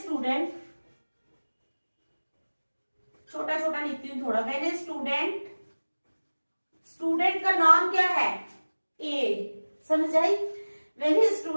छोटा छोटा लिखती हूँ थोड़ा. व्हेन ए स्टूडेंट, स्टूडेंट का नाम क्या है, ए, समझ आई. When a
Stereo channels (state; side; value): inverted; both; correlation -1.00